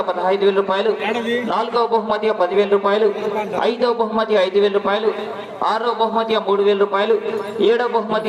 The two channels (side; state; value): both; identical; correlation 1.00